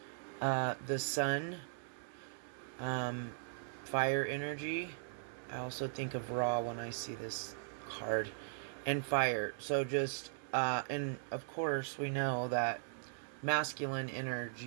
the sun, fire energy. I also think of Ra when I see this card, and fire. So just and of course we know that masculine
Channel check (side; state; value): left; silent; digital silence